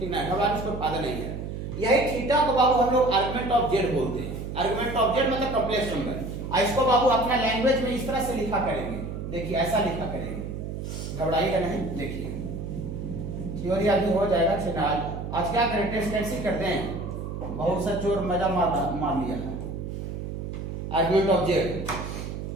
ना, घबराने से कोई फायदा नहीं है। यही थीटा को बाबू हम लोग आर्गुमेंट ऑफ z बोलते हैं, आर्गुमेंट ऑफ z मतलब कॉम्प्लेक्स नंबर। इसको बाबू अपना लैंग्वेज में इस तरह से लिखा करेंगे, देखिए ऐसा लिखा करेंगे, घबराइएगा नहीं। देखिए थ्योरी अभी हो जाएगा, फिलहाल आज क्या करें, टेस्ट कैंसिल करते हैं, बहुत सा चोर मजा मार लिया है। आर्गुमेंट ऑफ z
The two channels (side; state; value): right; noise; hum, 6 dB below the sound